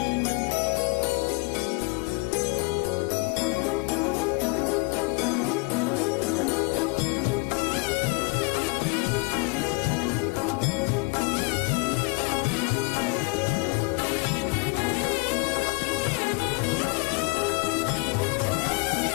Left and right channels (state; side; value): quieter; right; 29.5 dB